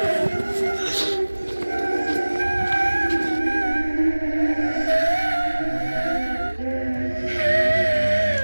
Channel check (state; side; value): inverted; both; correlation -1.00